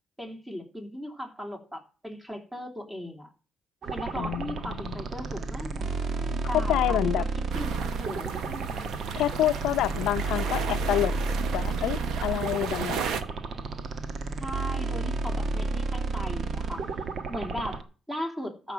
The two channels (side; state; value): both; normal; correlation 0.59